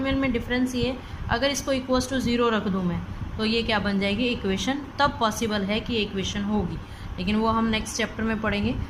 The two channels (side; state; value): both; identical; correlation 1.00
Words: में डिफरेंस ये, अगर इसको इक्वल्स टू 0 रख दूँ मैं तो ये क्या बन जाएगी इक्वेशन, तब पॉसिबल है कि इक्वेशन होगी, लेकिन वो हम नेक्स्ट चैप्टर में पढ़ेंगे।